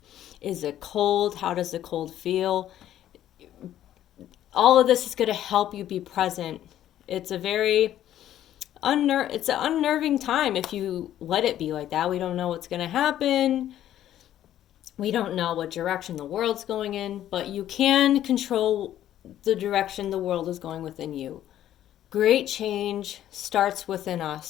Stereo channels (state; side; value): quieter; right; 12.0 dB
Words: Is it cold? How does the cold feel? All of this is going to help you be present. It's a very it's an unnerving time if you let it be like that. We don't know what's going to happen. We don't know what direction the world's going in, but you can control the direction the world is going within you. Great change starts within